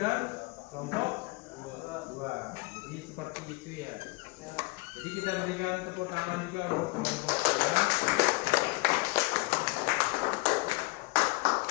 dan kelompok 2. Jadi seperti itu ya. Jadi kita berikan tepuk tangan juga untuk kelompok 2.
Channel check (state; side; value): quieter; right; 25.8 dB